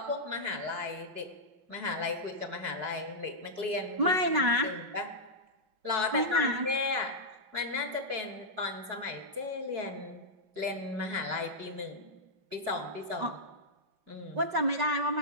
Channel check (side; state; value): left; late; 4.7 ms